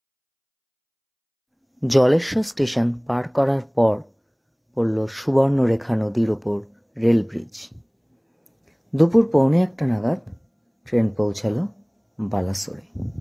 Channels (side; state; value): both; identical; correlation 1.00